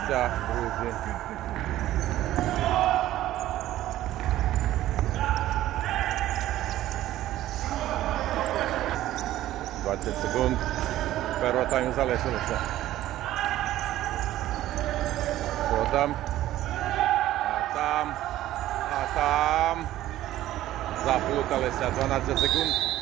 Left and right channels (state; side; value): quieter; left; 14.2 dB